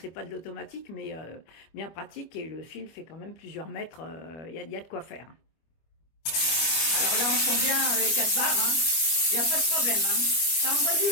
pas de l'automatique, mais bien pratique. Et le fil fait quand même plusieurs mètres. Il y a de quoi faire. Alors là, on sent bien les 4 barres. Hein. Il n'y a pas de problème. Hein. Ça envoie du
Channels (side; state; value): right; late; 25 ms